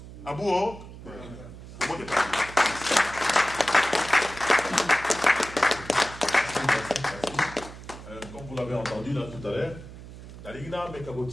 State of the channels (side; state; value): right; noise; hum, 14 dB below the sound